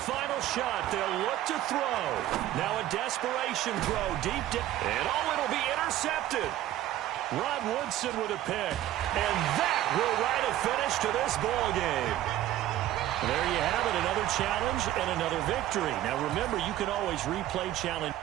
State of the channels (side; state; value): left; quieter; 13.5 dB